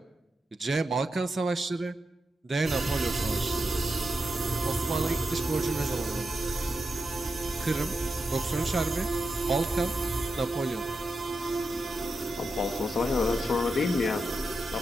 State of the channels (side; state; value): both; normal; correlation 0.88